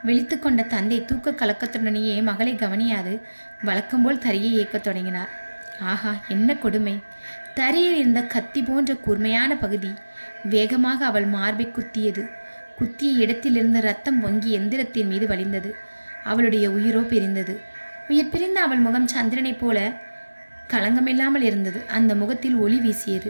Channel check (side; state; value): both; inverted; correlation -1.00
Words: விழித்து கொண்ட தந்தை தூக்க கலக்கத்துடனேயே மகளை கவனியாது வழக்கம்போல் தரையை இயக்கத் தொடங்கினார். ஆஹா, என்ன கொடுமை! தரையில் இருந்த கத்தி போன்ற கூர்மையான பகுதி வேகமாக அவள் மார்பை குத்தியது. குத்திய இடத்திலிருந்து ரத்தம் பொங்கி எந்திரத்தின் மீது வழிந்தது. அவளுடைய உயிரோ பிரிந்தது. உயிர் பிரிந்த அவள் முகம் சந்திரனைப் போல களங்கமில்லாமல் இருந்தது. அந்த முகத்தில் ஒளி